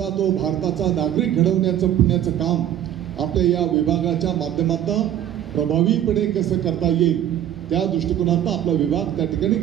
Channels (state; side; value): quieter; left; 11.1 dB